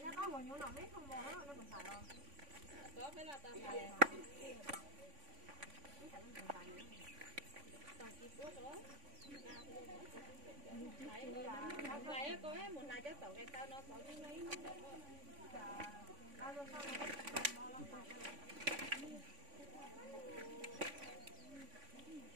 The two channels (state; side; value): late; left; 3.5 ms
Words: lại có một lại cho tổ cái tao nó có cái mấy